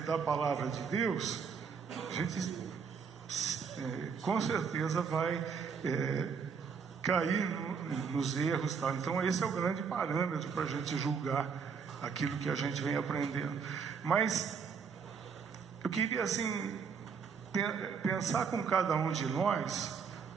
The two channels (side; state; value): left; quieter; 6.1 dB